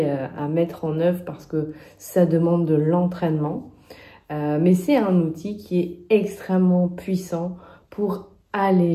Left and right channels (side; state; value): both; identical; correlation 1.00